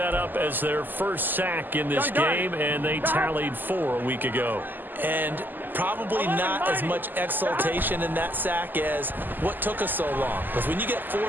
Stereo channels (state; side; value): late; left; 0.089 ms